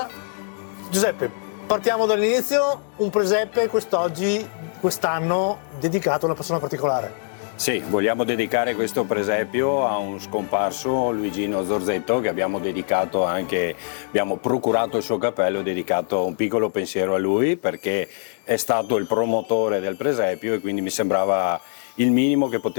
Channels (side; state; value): right; silent; digital silence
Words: Giuseppe, partiamo dall'inizio, un presepe quest'anno dedicato a una persona particolare. Sì, vogliamo dedicare questo presepio a un scomparso, Luigino Zorzetto, che abbiamo procurato il suo cappello e dedicato un piccolo pensiero a lui perché è stato il promotore del presepio e quindi mi sembrava il minimo che